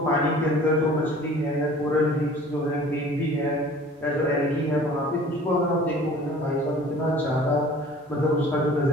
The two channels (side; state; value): both; normal; correlation 0.47